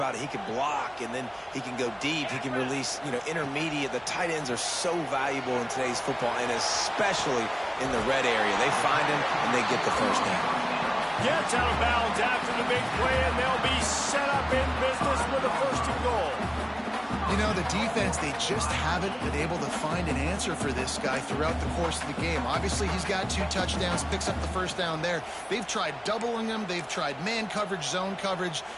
it, he can block, and then he can go deep. He can release, intermediate. The tight ends are so valuable in today's football, and especially in the red area. They find him, and they get the first down. Gets out of bounds after the big play, and they'll be set up in business with a 1st and goal. You know, the defense, they just haven't been able to find an answer for this guy throughout the course of the game. Obviously, he's got 2 touchdowns, picks up the first down there. They've tried doubling him. They've tried man coverage, zone coverage.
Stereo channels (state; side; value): identical; both; correlation 1.00